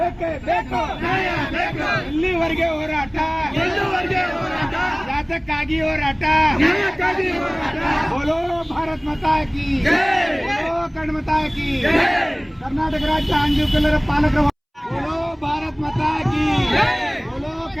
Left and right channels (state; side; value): identical; both; correlation 1.00